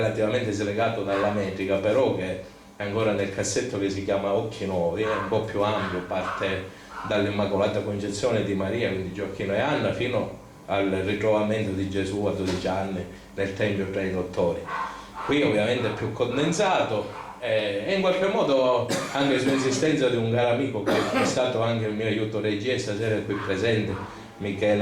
slegato dalla metrica, però che è ancora nel cassetto, che si chiama Occhi Nuovi, è un po' più ampio, parte dall'Immacolata Concezione di Maria, quindi Gioacchino e Anna, fino al ritrovamento di Gesù a 12 anni nel Tempio tra i dottori. Qui ovviamente è più condensato, e in qualche modo anche su insistenza di un caro amico che è stato anche il mio aiuto regia, stasera è qui presente,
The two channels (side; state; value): both; identical; correlation 1.00